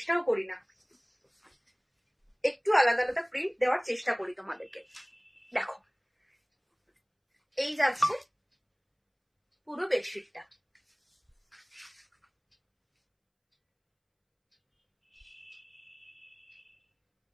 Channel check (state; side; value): identical; both; correlation 1.00